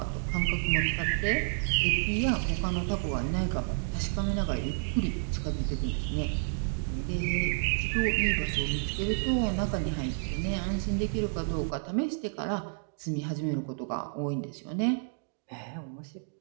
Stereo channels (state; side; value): silent; left; digital silence